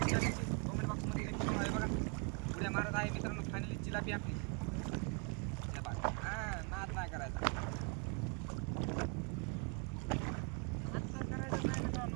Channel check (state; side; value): quieter; left; 32.8 dB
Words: जिलाबीची कमेंट बॉक्समध्ये आहे बघा. उड्या मारत आहे मित्रांनो फायनली जिलाबी आपली. हां नाद नाही करायचा, नाद तर करायचं नाही